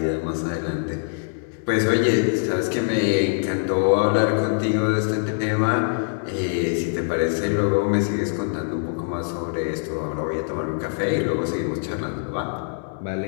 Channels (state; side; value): silent; right; 63 dB below the other